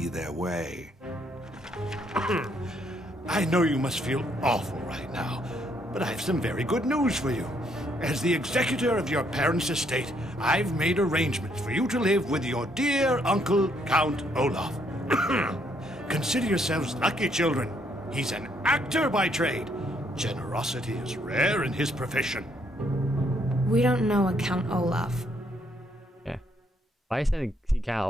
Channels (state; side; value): normal; both; correlation 0.71